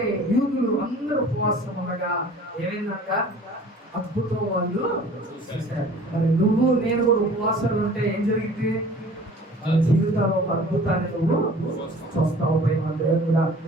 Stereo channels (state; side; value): normal; both; correlation 0.47